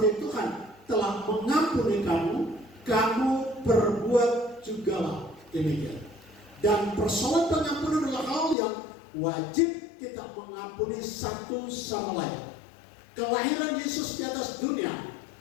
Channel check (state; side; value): drops out; right; at 8.6 s